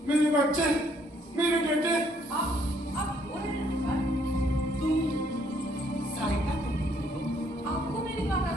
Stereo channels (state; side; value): normal; both; correlation 0.67